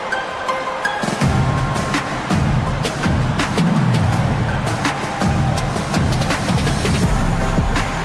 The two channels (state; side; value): identical; both; correlation 1.00